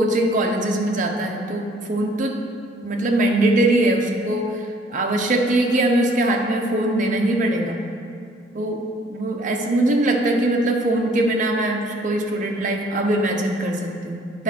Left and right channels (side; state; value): both; normal; correlation 0.59